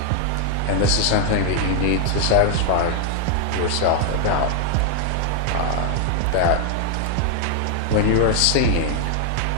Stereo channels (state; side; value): different; both; correlation 0.00